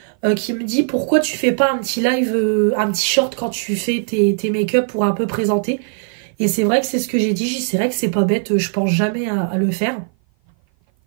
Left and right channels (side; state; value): left; silent; 56 dB below the other